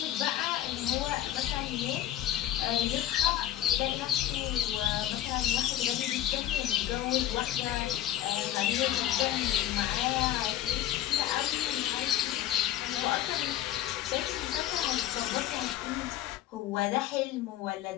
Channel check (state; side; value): quieter; right; 12.7 dB